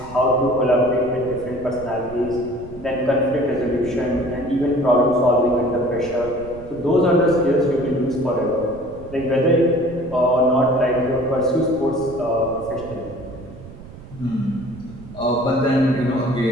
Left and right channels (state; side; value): noise; right; rumble, 17 dB below the sound